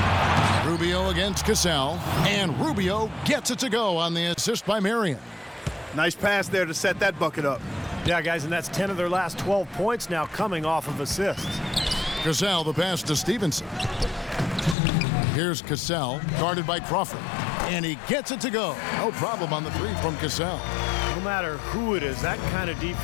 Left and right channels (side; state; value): right; drops out; at 14.8 s